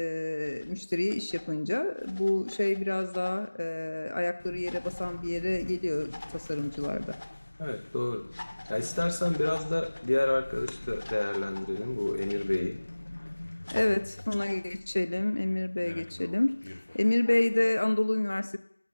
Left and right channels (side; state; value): both; inverted; correlation -1.00